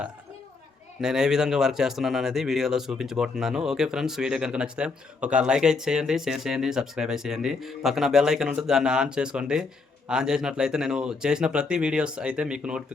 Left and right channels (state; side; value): quieter; right; 4.2 dB